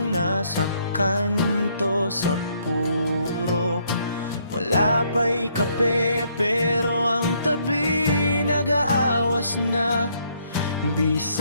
nasa kanto sa purok. Wala pa'y kape pero ang tabi nag-aawas na.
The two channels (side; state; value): both; inverted; correlation -0.70